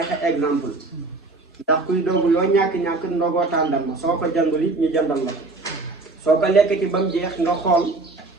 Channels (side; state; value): left; quieter; 3.4 dB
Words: exemple ndax kuy dogu loo ñàkk-ñàkk ndogoo tàndarma soo ko jëndul it ñu jëndal la ko. soo ko lekkati ba mu jeex nga xool